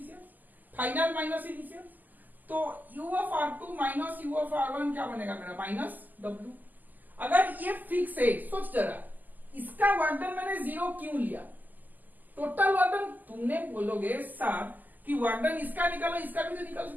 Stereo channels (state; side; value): late; left; 0.084 ms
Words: final minus initial. तो U of R2 minus U of R1 क्या बनेगा मेरा? Minus W। अगर ये फिक्स है, सोच जरा, इसका वर्क डन मैंने 0 क्यों लिया? टोटल वर्क डन तुमने बोलोगे सर कि वर्क डन इसका निकालो, इसका भी तो निकालो,